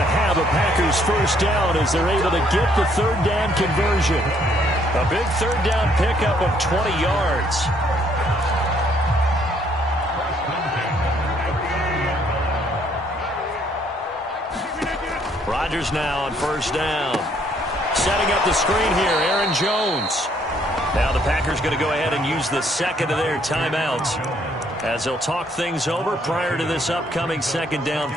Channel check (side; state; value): both; normal; correlation 0.67